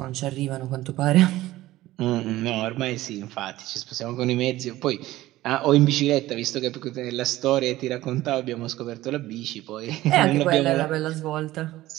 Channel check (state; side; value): quieter; left; 16.3 dB